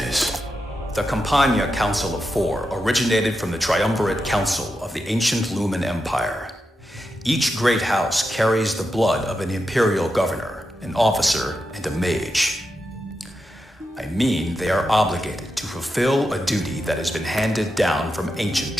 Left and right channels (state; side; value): normal; both; correlation 0.87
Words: the Campania Council of Four originated from the Triumvirate Council of the ancient Lumen Empire. Each great house carries the blood of an imperial governor, an officer, and a mage. I mean, they are obligated to fulfill a duty that has been handed down from ancient